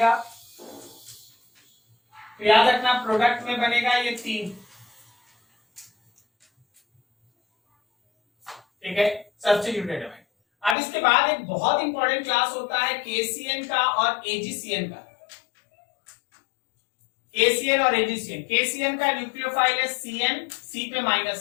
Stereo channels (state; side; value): drops out; right; at 10.8 s